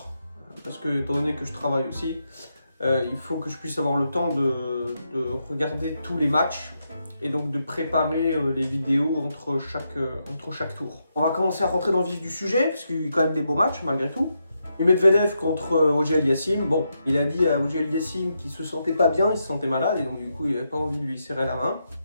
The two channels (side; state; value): both; inverted; correlation -0.83